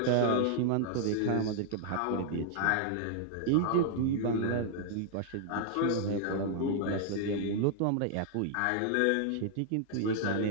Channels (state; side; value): different; both; correlation -0.01